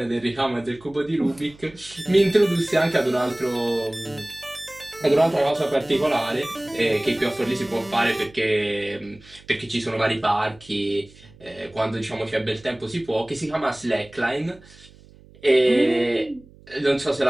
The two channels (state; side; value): noise; right; hum, 24 dB below the sound